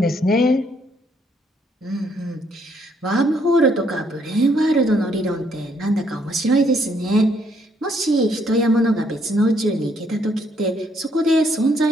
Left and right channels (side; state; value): both; normal; correlation 0.70